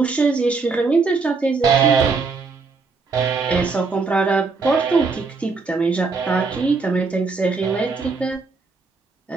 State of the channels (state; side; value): quieter; left; 4.4 dB